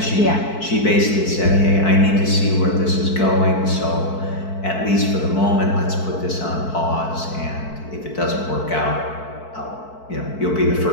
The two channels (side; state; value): right; late; 4.6 ms